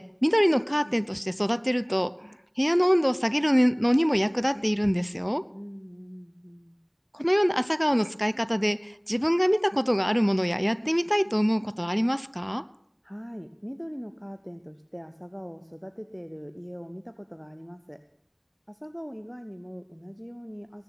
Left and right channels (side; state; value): both; identical; correlation 1.00